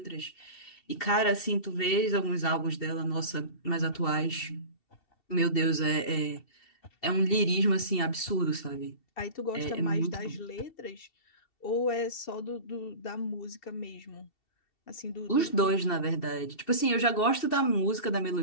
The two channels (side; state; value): right; late; 2.7 ms